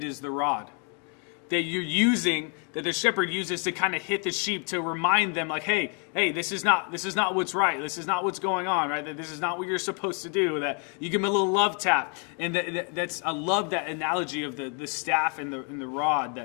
is the rod that you're using, that the shepherd uses to kind of hit the sheep, to remind them, like, hey, this is not what's right. This is not what's going on, right? That this is not what you're supposed to do. That you give them a little love tap, and I love that analogy of the staff and the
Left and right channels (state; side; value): quieter; right; 38.3 dB